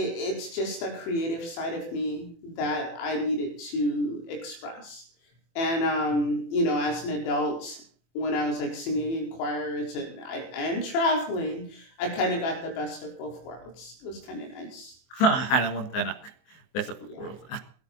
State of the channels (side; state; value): right; late; 24 ms